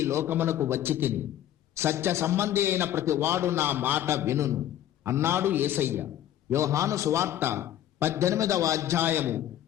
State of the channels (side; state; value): right; quieter; 11.9 dB